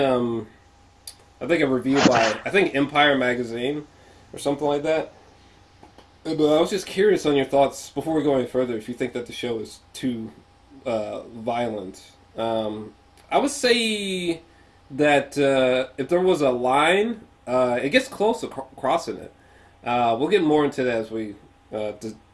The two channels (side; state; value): both; identical; correlation 1.00